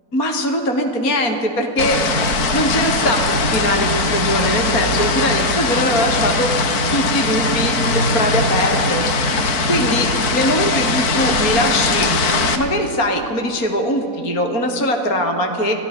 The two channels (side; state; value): right; late; 4.4 ms